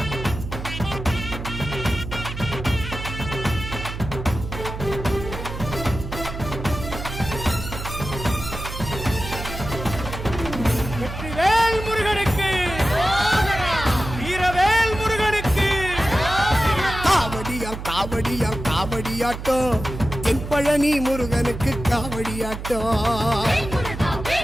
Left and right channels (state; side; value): noise; right; hum, 8 dB below the sound